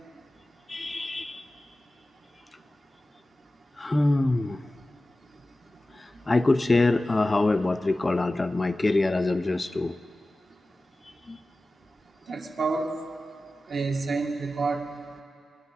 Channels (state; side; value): normal; both; correlation 0.95